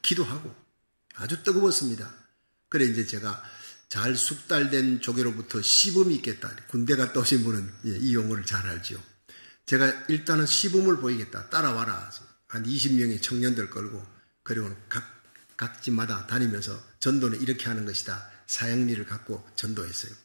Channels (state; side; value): inverted; both; correlation -1.00